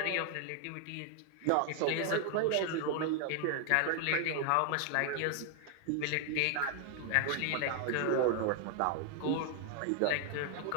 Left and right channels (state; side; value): different; both; correlation 0.00